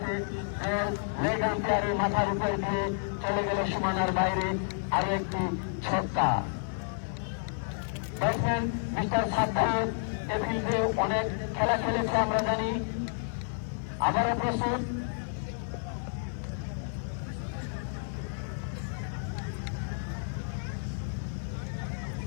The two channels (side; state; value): right; silent; 57 dB below the other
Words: লেগ আম্পায়ারের মাথার উপর দিয়ে চলে গেল সীমানার বাইরে। আরো একটি ছক্কা। ব্যাটসম্যান মিস্টার সাদ্দাম এ ফিল্ডে অনেক খেলা খেলেছে আমরা জানি। আবারও প্রস্তুত।